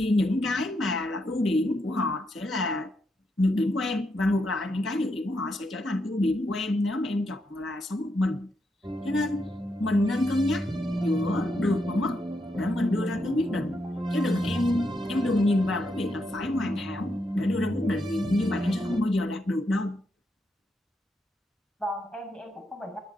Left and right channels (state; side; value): normal; both; correlation 0.81